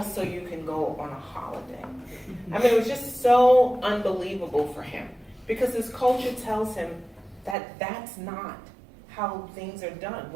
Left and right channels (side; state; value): left; drops out; at 7.6 s